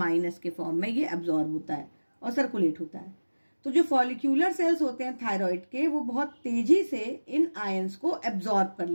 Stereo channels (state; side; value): inverted; both; correlation -1.00